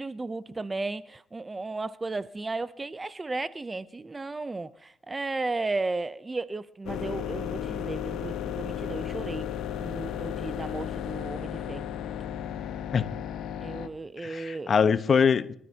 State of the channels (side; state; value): right; quieter; 3.2 dB